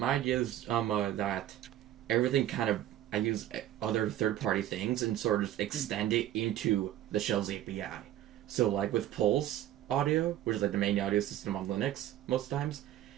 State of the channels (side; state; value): left; quieter; 12.6 dB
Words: is that everything kind of I use other third-party things and sort of just extend it into the shell's API. So like with Pulse Audio, which is like the main audio system on Linux most times,